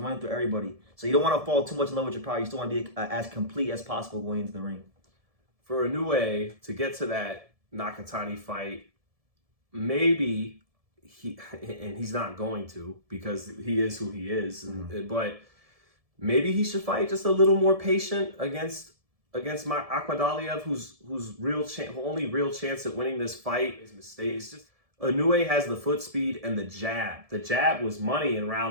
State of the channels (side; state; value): left; late; 1.7 ms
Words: through everybody. So you don't want to fall too much in love with your power. You still want to be as complete as possible going into the ring. For Inoue to get to that Nakatani fight, maybe he's not going to, because he is who he is. But maybe he should fight just a little more patient against Akhmadaliev, whose only real chance at winning this fight is mistakes. Just Inoue has the foot speed and the jab. The jab was money in